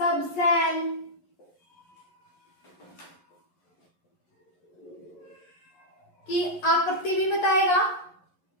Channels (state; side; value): late; right; 11 ms